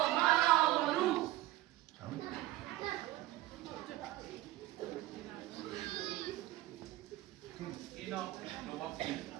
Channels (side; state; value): left; quieter; 16.2 dB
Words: So. Ino, no wapi.